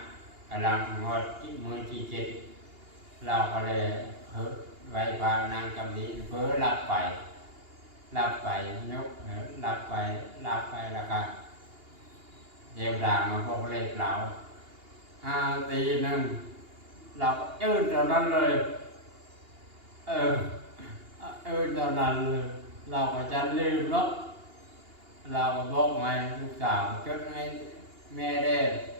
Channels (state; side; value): late; left; 2.8 ms